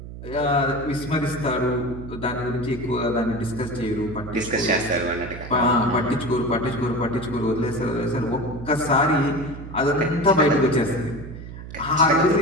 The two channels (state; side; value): noise; right; hum, 12 dB below the sound